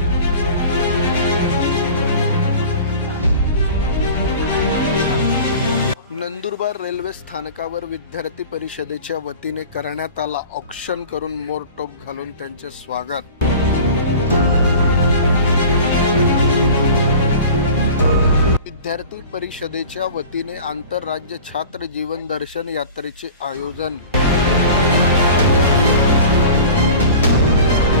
नंदुरबार रेल्वे स्थानकावर विद्यार्थी परिषदेच्या वतीने करण्यात आला औक्षण करून मोरटोप घालून त्यांचे स्वागत। विद्यार्थी परिषदेच्या वतीने आंतरराज्य छात्र जीवन दर्शन यात्रेचे आयोजन।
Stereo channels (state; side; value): inverted; both; correlation -0.40